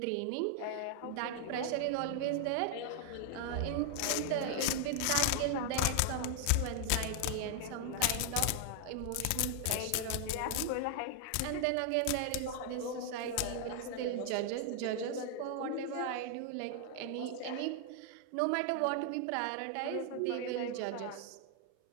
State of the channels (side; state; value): both; different; correlation 0.00